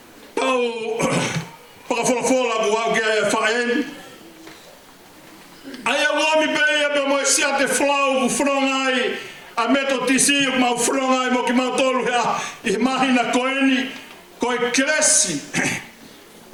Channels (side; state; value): both; identical; correlation 1.00